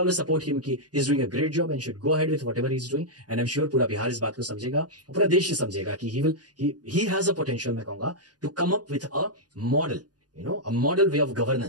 support him कि he is doing a great job and should go ahead with whatever he is doing, and I am sure पूरा बिहार इस बात को समझेगा, पूरा देश ही समझेगा कि he has a potential, मैं कहूंगा, to come up with a model, you know, a model way of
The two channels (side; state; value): left; late; 0.69 ms